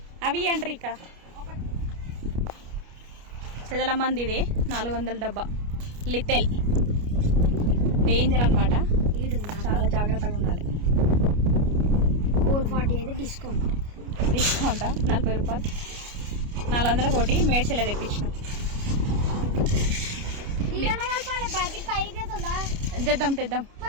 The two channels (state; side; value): late; left; 29 ms